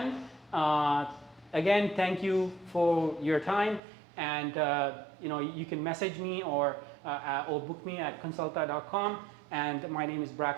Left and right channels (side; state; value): left; drops out; at 3.8 s